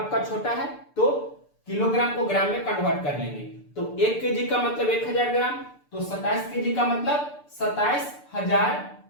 छोटा है तो किलोग्राम को ग्राम में कन्वर्ट कर लेंगे। तो 1 केजी का मतलब 1000 ग्राम, तो 27 केजी का मतलब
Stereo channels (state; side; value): late; right; 6.8 ms